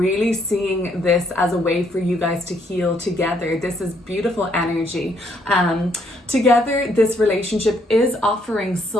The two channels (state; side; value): normal; both; correlation 0.70